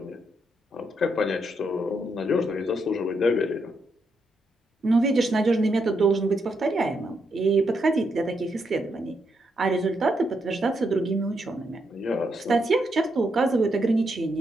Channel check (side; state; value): both; normal; correlation 0.80